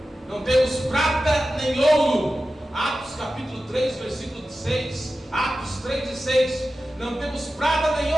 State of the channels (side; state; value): both; normal; correlation 0.93